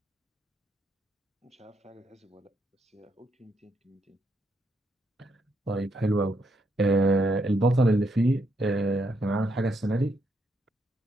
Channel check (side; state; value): both; normal; correlation 0.77